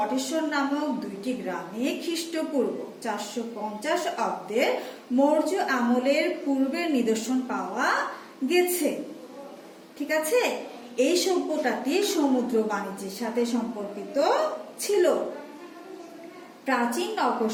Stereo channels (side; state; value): both; identical; correlation 1.00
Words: নামক দুইটি গ্রামে খ্রিস্টপূর্ব 450 অব্দের মৌর্য আমলের পূর্বের নিদর্শন পাওয়া গেছে। ঠিক আছে, এই সভ্যতাটি সমুদ্র বাণিজ্যের সাথে সম্পর্কিত ছিল। প্রাচীন নগর